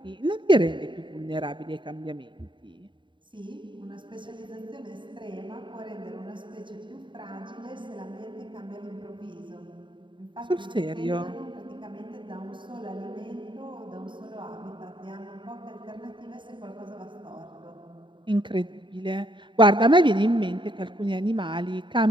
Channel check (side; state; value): left; late; 0.23 ms